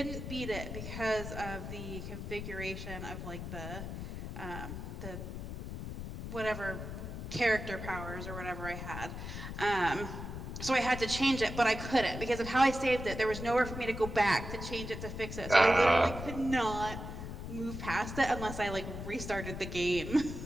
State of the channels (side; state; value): left; noise; rumble, 7 dB below the sound